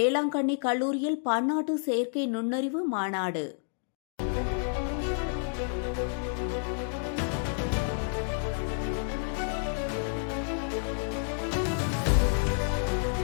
கல்லூரியில் பன்னாட்டு செயற்கை நுண்ணறிவு மாநாடு.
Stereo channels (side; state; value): right; silent; digital silence